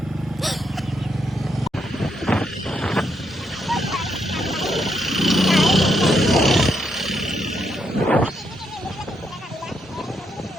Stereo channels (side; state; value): both; normal; correlation 0.78